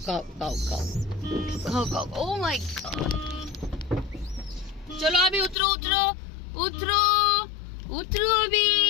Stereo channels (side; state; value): right; drops out; at 5.6 s